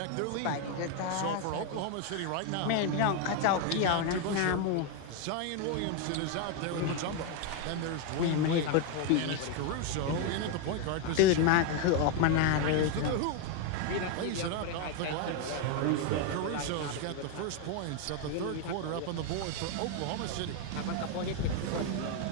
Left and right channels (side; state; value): both; different; correlation 0.01